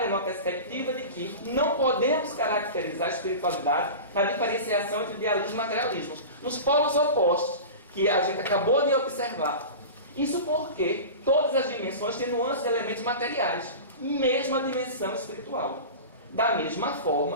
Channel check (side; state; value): both; inverted; correlation -0.31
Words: numa perspectiva de que não podemos caracterizar a espiritualidade na diferenciação entre idealismo e materialismo, nos polos opostos que a gente acabou de observar. Isso porque todas as dimensões têm nuances de elementos materiais, mesmo a dimensão espiritual. Da mesma